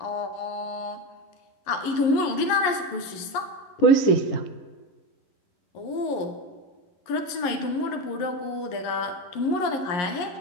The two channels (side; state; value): right; late; 11 ms